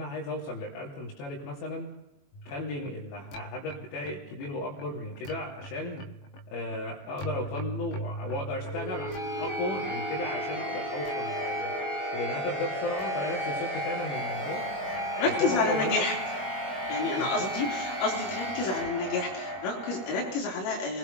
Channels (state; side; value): late; right; 21 ms